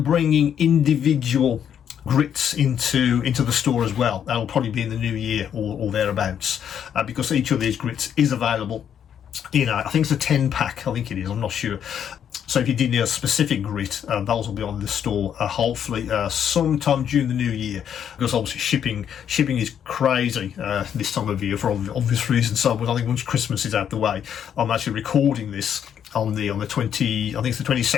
bringing individual grits into the store as well. That'll probably be in the new year or thereabouts, because each of these grits is available. I think it's a 10 pack, I think it is, I'm not sure. So if you did need a specific grit, those will be on the store hopefully sometime during the new year, because obviously shipping is crazy this time of year for obvious reasons. So I think once Christmas is out the way, I'm actually recording this on the 20, I think it's the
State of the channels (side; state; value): right; quieter; 8.9 dB